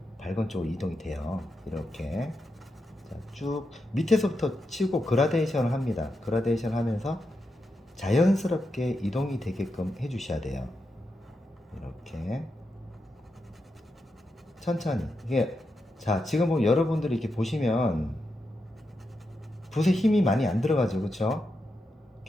밝은 쪽으로 이동이 돼요. 이렇게. 자, 쭉 밑에서부터 치고 그라데이션을 합니다. 그라데이션 하면서 자연스럽게 이동이 되게끔 해주셔야 돼요. 이렇게 천천히. 이게, 자, 지금 뭐 여러분들이 이렇게 보시면 붓에 힘이 많이 안 들어가죠, 그렇죠?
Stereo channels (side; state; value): both; normal; correlation 0.86